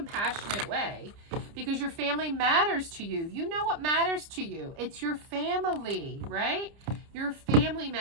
way because your family matters to you. You know what matters to you. It's your family, right? Your family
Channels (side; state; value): left; late; 30 ms